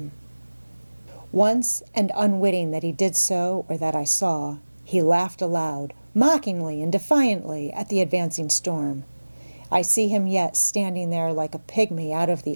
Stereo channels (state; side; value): inverted; both; correlation -1.00